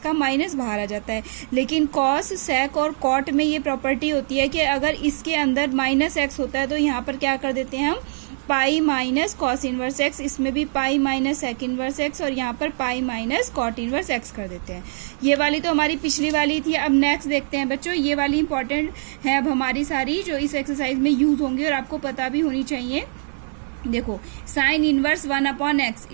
माइनस बाहर आ जाता है। लेकिन कॉस, सेक और कॉट में ये प्रॉपर्टी होती है कि अगर इसके अंदर माइनस एक्स होता है तो यहाँ पर क्या कर देते हैं हम, pi minus cos inverse x. इसमें भी pi minus sec inverse x और यहाँ पर pi minus cot inverse x कर देते हैं। ये वाली तो हमारी पिछली वाली थी। अब नेक्स्ट देखते हैं बच्चों, ये वाली इंपॉर्टेंट है अब हमारी सारी जो इस एक्सरसाइज में यूज होंगी और आपको पता भी होनी चाहिए। देखो, sine inverse 1/x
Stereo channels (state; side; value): silent; left; 58 dB below the other